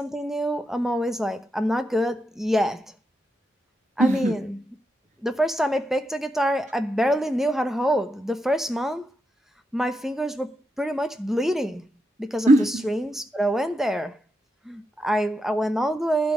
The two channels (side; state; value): both; normal; correlation 0.85